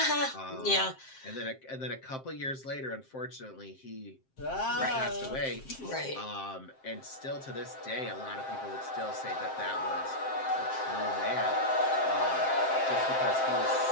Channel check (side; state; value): right; late; 7.6 ms